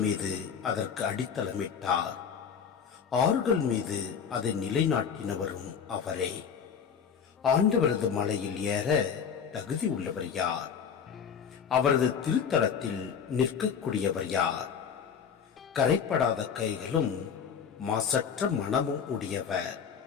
மீது அதற்கு அடித்தளமிட்டார், ஆறுகள் மீது அதை நிலைநாட்டினவரும் அவரே. ஆண்டவரது மலையில் ஏற தகுதி உள்ளவர் யார்? அவரது திருத்தலத்தில் நிற்கக்கூடியவர் யார்? கரைப்படாத கைகளும் மாசற்ற மனமும் உடையவர்,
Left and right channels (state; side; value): quieter; right; 7.1 dB